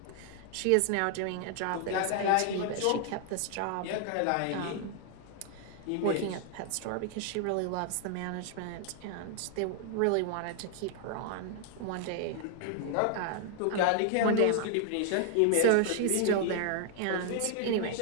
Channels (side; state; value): both; different; correlation 0.00